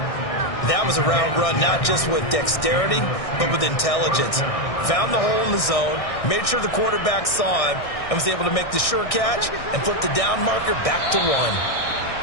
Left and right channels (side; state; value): right; late; 1.6 ms